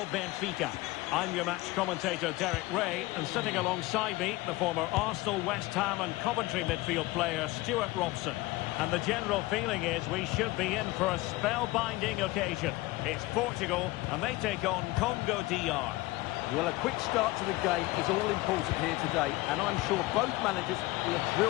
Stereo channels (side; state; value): right; quieter; 20.1 dB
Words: Benfica. I'm your match commentator Derek Ray, and sitting alongside me, the former Arsenal, West Ham and Coventry midfield player Stuart Robson. And the general feeling is we should be in for a spellbinding occasion. It's Portugal, and they take on Congo DR. Well, a quick start to the game is all important here today, and I'm sure both managers will have